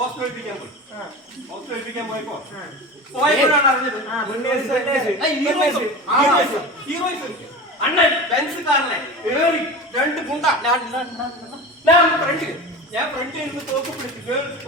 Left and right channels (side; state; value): both; normal; correlation 0.31